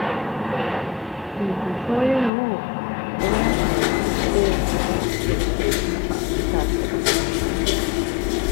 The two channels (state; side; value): drops out; right; at 2.3 s